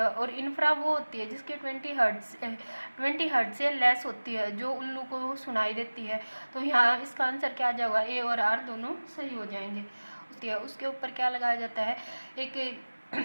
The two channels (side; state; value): both; inverted; correlation -1.00